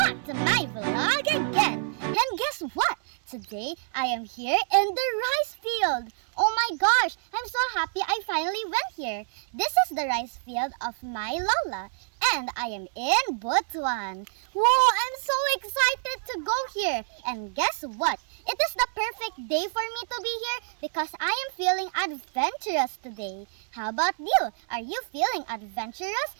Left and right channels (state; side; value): silent; left; digital silence